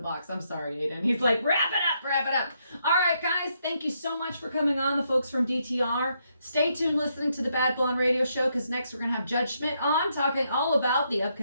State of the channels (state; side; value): inverted; both; correlation -0.77